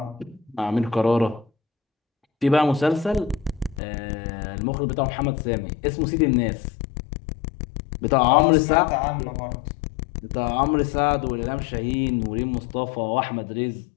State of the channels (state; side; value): drops out; right; at 3.8 s